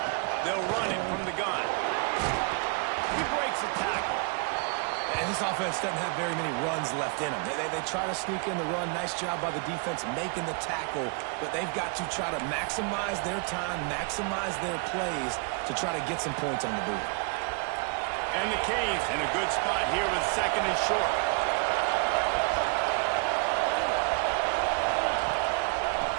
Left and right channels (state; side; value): quieter; left; 35.7 dB